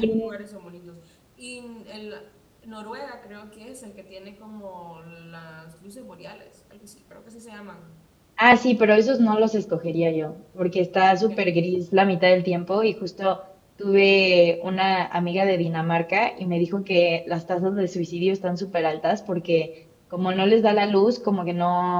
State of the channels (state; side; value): identical; both; correlation 1.00